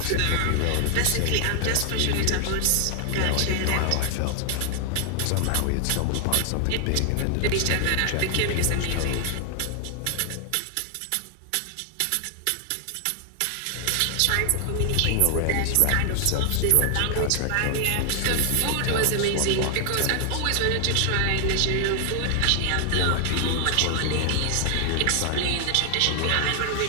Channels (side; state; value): both; different; correlation 0.00